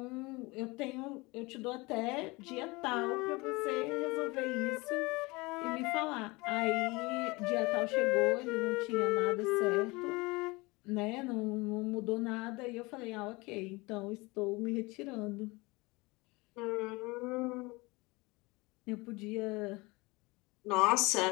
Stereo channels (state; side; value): quieter; right; 24.2 dB